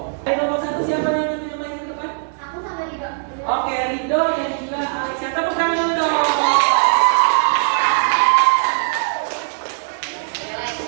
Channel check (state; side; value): silent; left; digital silence